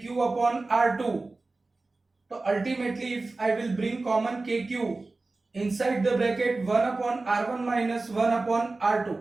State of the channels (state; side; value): quieter; left; 3.4 dB